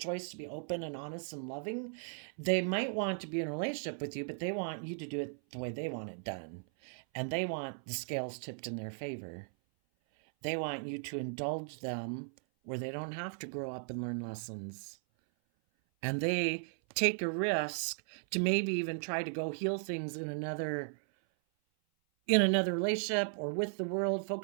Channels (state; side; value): silent; left; 53 dB below the other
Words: to be open and honest and loving, they might want to be in a relationship with you, but they want you to do it the way they want it done. And they want the scales tipped in their favor. They want you to indulge them where they don't have to grow up and learn lessons. And they take a risk to maybe even try to go heal things in another relationship or with the world,